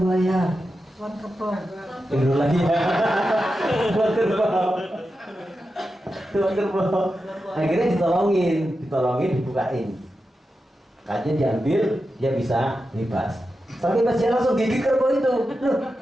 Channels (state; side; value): normal; both; correlation 0.90